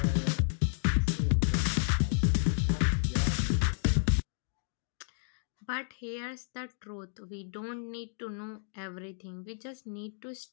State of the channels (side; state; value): right; silent; digital silence